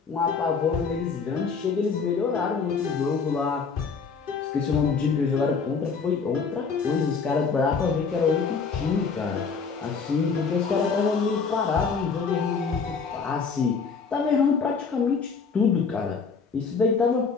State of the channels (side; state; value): right; quieter; 5.3 dB